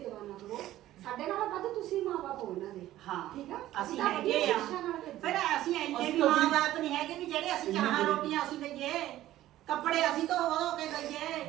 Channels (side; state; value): left; quieter; 14.3 dB